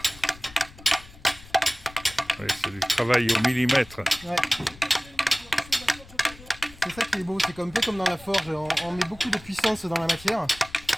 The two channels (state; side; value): noise; left; rumble, 20 dB below the sound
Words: Oui, c'est du travail au millimètre. Ouais. C'est ça qui est beau, c'est un peu comme dans la forge, on met beaucoup de puissance dans la matière,